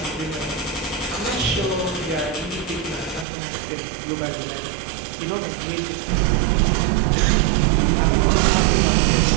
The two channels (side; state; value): left; drops out; at 3.2 s